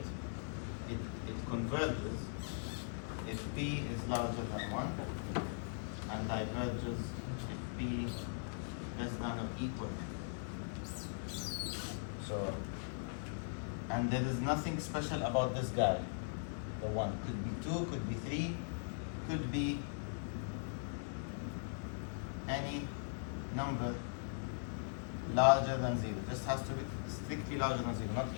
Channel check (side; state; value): right; silent; digital silence